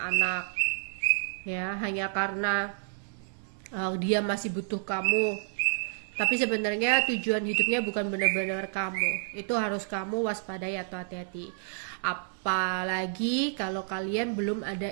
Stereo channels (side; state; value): left; silent; 58 dB below the other